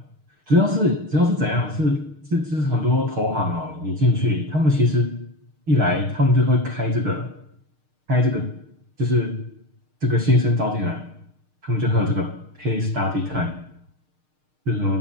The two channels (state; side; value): late; left; 6.5 ms